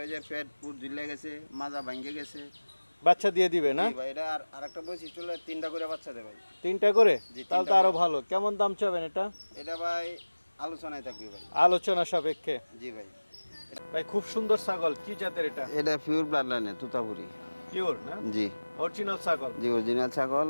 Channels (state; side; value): inverted; both; correlation -1.00